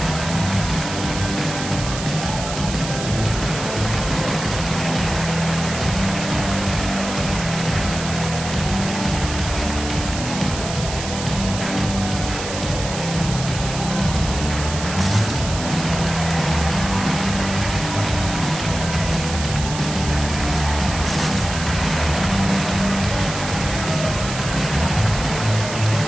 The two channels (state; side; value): noise; right; hiss, 8 dB below the sound